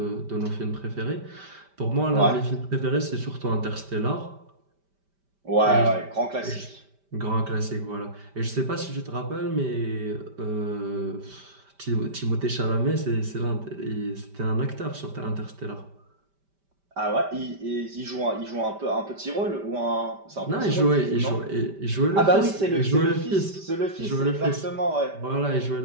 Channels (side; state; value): left; late; 5.1 ms